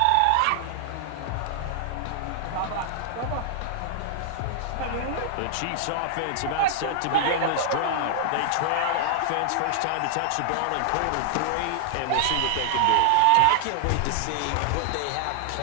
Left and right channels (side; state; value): both; different; correlation 0.00